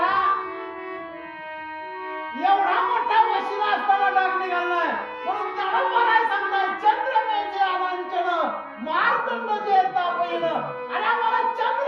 एवढा मोठा वशिला असताना डाग निघाला नाही, म्हणून त्याला म्हणाय सांगतात चंद्रमेचे अनांचन मार्तंड जे तापयन. आणि आम्हाला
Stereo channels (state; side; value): identical; both; correlation 1.00